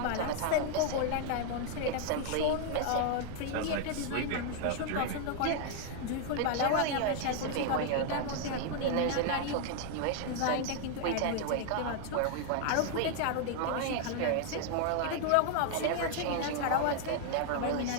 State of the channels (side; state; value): both; different; correlation 0.00